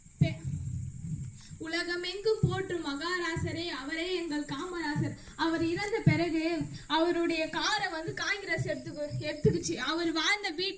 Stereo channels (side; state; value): both; identical; correlation 1.00